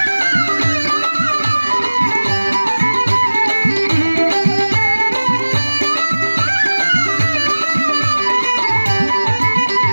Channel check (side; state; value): both; inverted; correlation -1.00